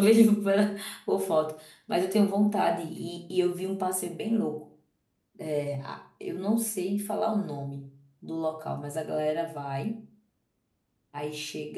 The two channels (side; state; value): both; identical; correlation 1.00